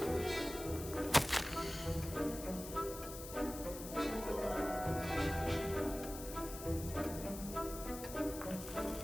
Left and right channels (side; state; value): left; noise; hiss, 11 dB below the sound